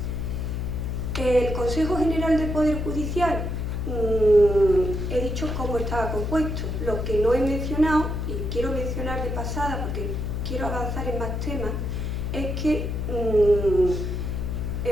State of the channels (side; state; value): left; noise; hum, 2 dB below the sound